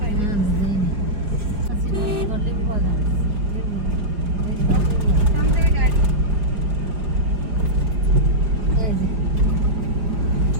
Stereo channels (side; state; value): left; late; 4.9 ms